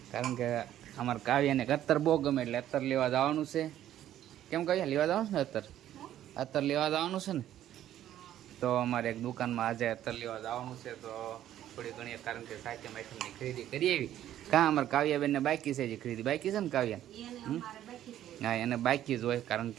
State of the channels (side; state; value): left; quieter; 12.0 dB